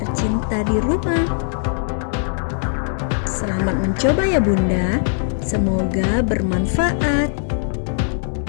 di rumah. Selamat mencoba ya Bunda. Semoga bermanfaat.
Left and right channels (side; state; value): right; silent; digital silence